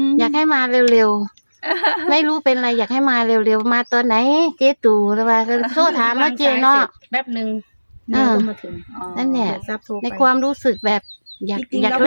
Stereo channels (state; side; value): inverted; both; correlation -1.00